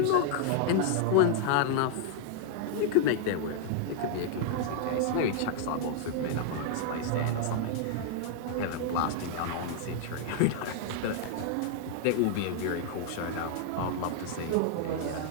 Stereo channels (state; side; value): different; both; correlation 0.00